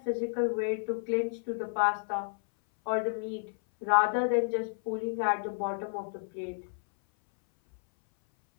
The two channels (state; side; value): silent; right; 57 dB below the other